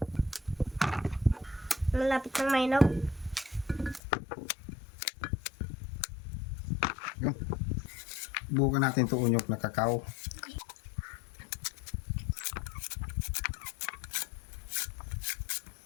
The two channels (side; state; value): right; drops out; at 4.0 s